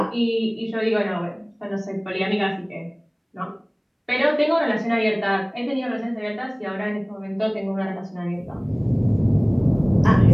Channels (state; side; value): identical; both; correlation 1.00